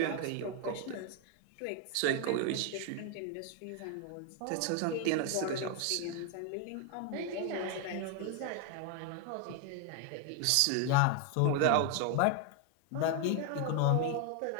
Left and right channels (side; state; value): both; different; correlation 0.01